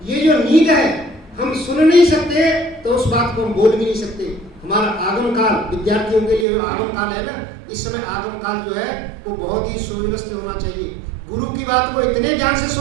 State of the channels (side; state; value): left; drops out; at 6.5 s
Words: ये जो नींद है, हम सुन नहीं सकते तो उस बात को हम बोल भी नहीं सकते। हमारा आगम काल, विद्यार्थियों के लिए आगम काल है ना, इस समय आगम काल जो है वो बहुत ही सुव्यवस्थित होना चाहिए। गुरु की बात को इतने ध्यान से